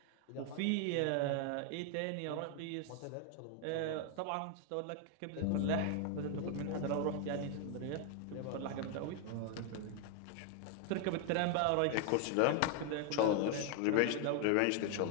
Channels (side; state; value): both; different; correlation 0.00